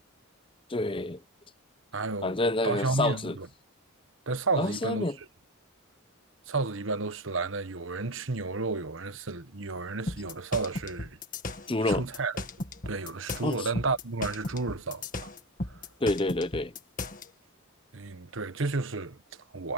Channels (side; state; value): both; normal; correlation 0.22